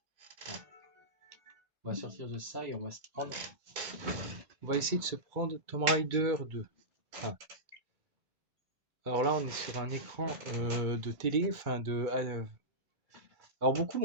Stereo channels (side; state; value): left; late; 2.3 ms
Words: On va sortir de ça et on va se prendre. On va essayer de se prendre Tomb Raider 2. Enfin, alors là, on est sur un écran de télé, alors beaucoup